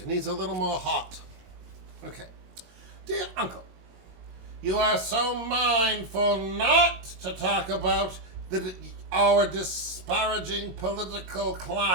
needs a little more hot. Okay. Dear Uncle, you are so mindful not to talk about our disparaging political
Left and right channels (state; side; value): late; left; 22 ms